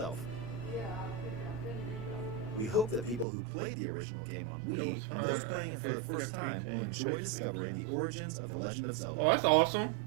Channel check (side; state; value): left; drops out; at 3.2 s